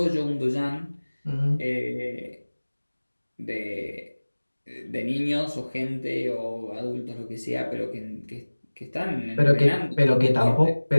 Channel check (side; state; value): both; inverted; correlation -1.00